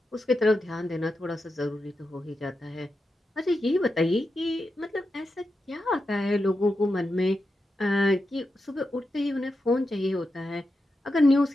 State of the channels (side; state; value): both; normal; correlation 0.88